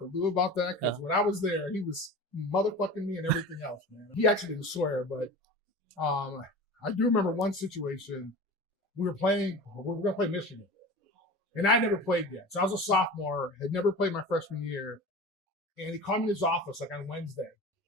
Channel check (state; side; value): normal; both; correlation 0.34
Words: Lou about that because when I was there, he was motherfucking me and everything else, man. He actually didn't swear, but I do remember one situation. We were going to play Michigan, and I never played yet. So I was a sophomore, had never played my freshman year, and he called me in his office like on Wednesday.